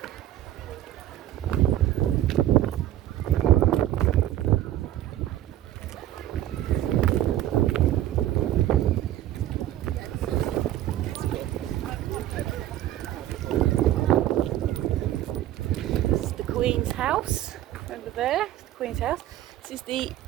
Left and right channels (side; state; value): left; quieter; 13.2 dB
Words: This is the Queen's House over there. The Queen's House. This is the